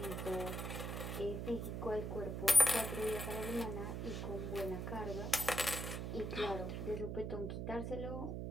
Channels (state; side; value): noise; right; hum, 3 dB below the sound